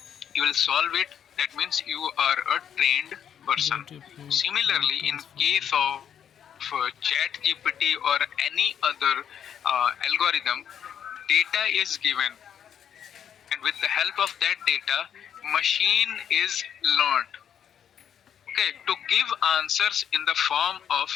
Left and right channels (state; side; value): quieter; right; 8.9 dB